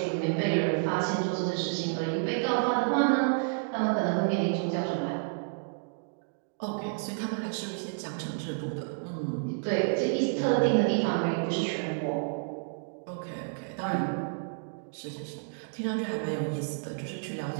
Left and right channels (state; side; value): silent; left; digital silence